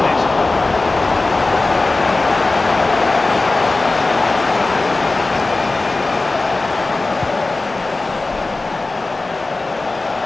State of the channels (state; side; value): quieter; right; 3.3 dB